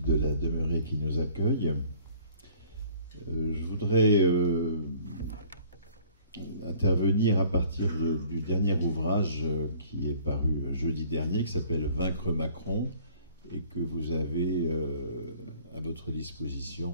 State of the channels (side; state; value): both; inverted; correlation -0.54